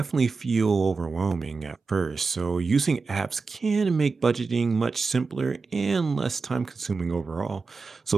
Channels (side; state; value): left; quieter; 4.4 dB